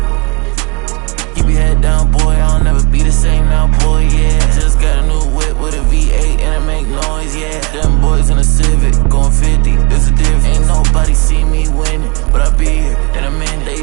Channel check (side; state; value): left; quieter; 28.4 dB